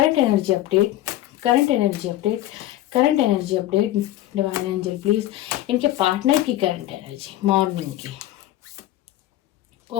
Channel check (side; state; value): right; quieter; 14.5 dB